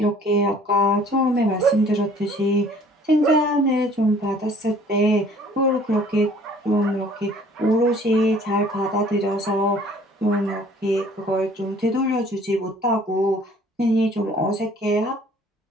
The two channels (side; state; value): both; normal; correlation 0.54